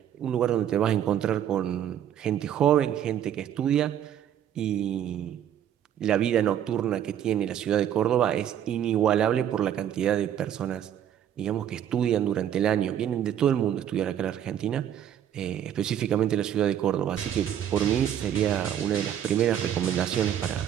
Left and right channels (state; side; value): quieter; left; 10.1 dB